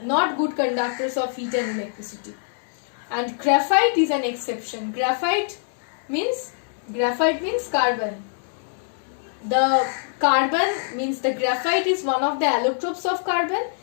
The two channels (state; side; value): silent; right; digital silence